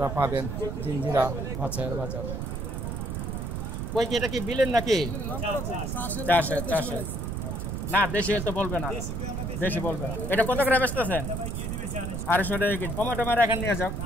পাবেন জিঞ্জিরা মাছের বাজার। কই কি এটা কি বিলেন নাকি? চাষে। না দেশি তো বলবে না, দেশি বলবে। এটা কত করে বেচতেছেন? 250 টাকা কেজি। কমে টমেটো এখানে নিয়ে যাও,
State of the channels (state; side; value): noise; right; rumble, 3 dB below the sound